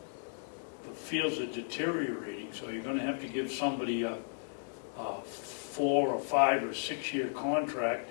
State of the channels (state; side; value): silent; right; digital silence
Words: the fields are deteriorating, so you're gonna have to give somebody a 4 or 5 or 6 year contract,